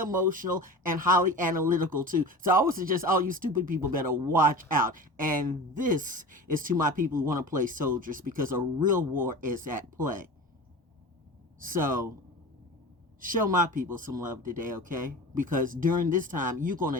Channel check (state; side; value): normal; both; correlation 0.34